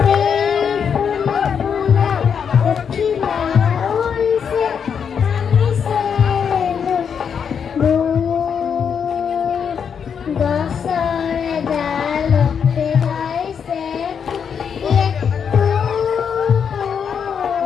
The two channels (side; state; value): right; quieter; 7.1 dB